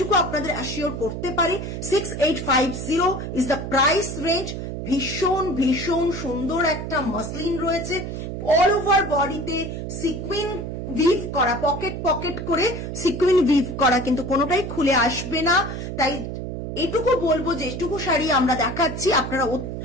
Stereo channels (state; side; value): noise; right; hum, 6 dB below the sound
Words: আপনাদের অ্যাসিওর করতে পারি। 6850 ইজ দ্য প্রাইস রেঞ্জ। ভীষণ ভীষণ সুন্দর একটা মাসলিন রয়েছে, অল ওভার বডিতে সিকুইন উইভ করা, পকেট পকেট করে সিকুইন উইভ করা, কিন্তু কোনোটাই খুলে আসবে না। তাই এটুকু বলবো যে এটুকু শাড়ি আমরা দেখাচ্ছি, আপনারা